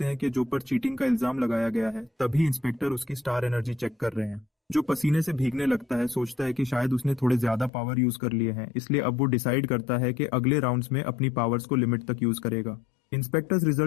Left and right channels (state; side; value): drops out; right; at 7.7 s